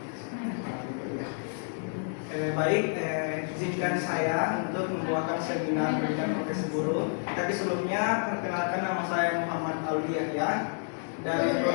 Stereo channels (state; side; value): silent; right; 58 dB below the other